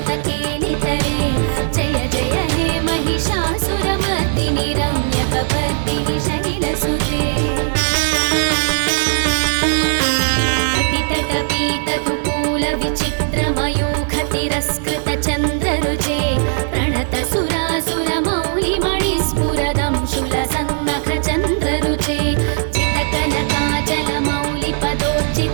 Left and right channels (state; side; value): silent; left; digital silence